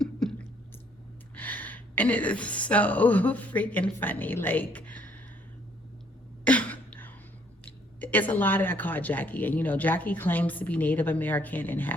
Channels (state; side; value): normal; both; correlation 0.65